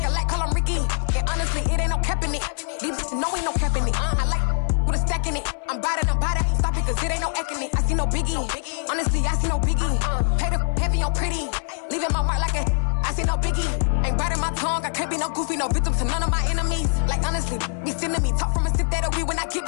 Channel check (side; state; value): right; silent; digital silence